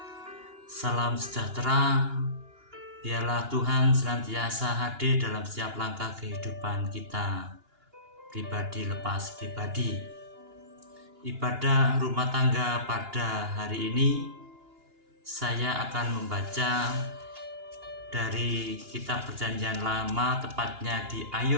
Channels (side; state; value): left; late; 2.8 ms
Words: Salam sejahtera. Biarlah Tuhan senantiasa hadir dalam setiap langkah kehidupan kita, pribadi lepas pribadi. Ibadah rumah tangga pada hari ini, saya akan membaca dari kitab Perjanjian Lama, tepatnya di